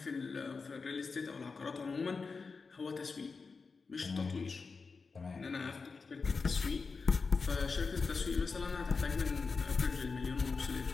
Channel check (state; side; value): quieter; right; 4.6 dB